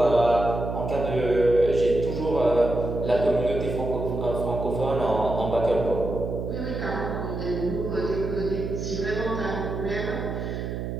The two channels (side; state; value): right; noise; hum, 4 dB below the sound